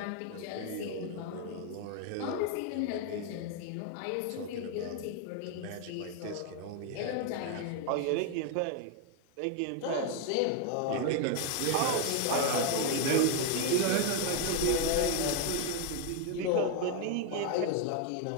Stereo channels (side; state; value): both; different; correlation 0.01